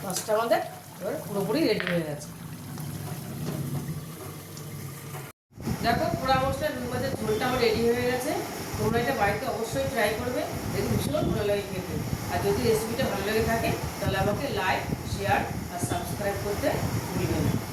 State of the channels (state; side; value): identical; both; correlation 1.00